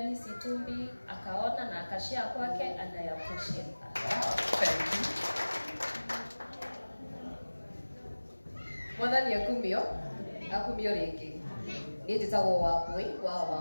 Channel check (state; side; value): inverted; both; correlation -1.00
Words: Itumbi akaona na akashare kwake and I appreciate that. Thank you. Mwathani akumio ringi ni nditagwo Wambui wa